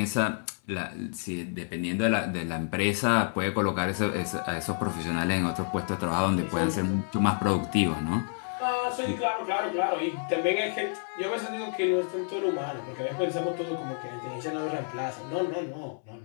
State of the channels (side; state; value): right; silent; 58 dB below the other